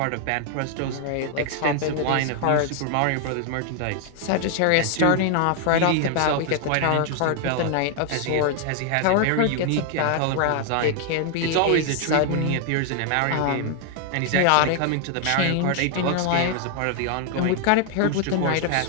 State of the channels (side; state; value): both; different; correlation 0.00